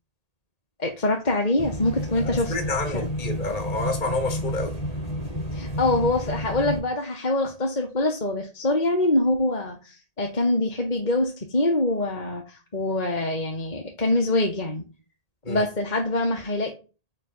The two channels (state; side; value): late; right; 1.8 ms